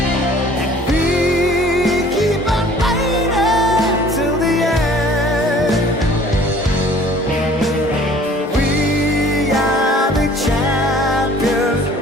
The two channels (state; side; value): normal; both; correlation 0.52